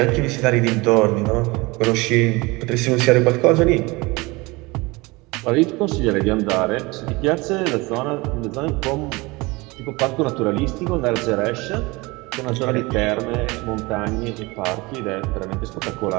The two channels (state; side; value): quieter; left; 23.9 dB